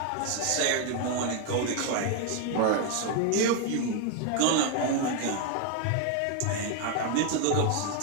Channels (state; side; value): different; both; correlation 0.00